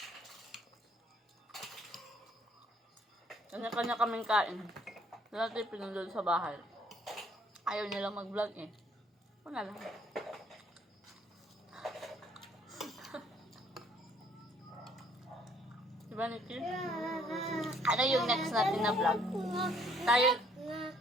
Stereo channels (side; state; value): both; normal; correlation 0.62